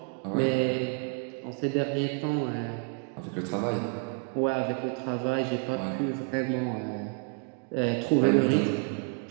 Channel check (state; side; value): quieter; left; 37.0 dB